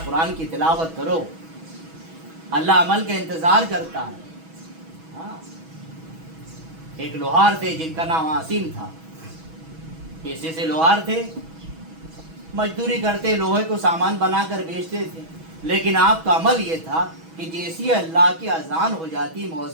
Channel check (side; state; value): left; late; 6.2 ms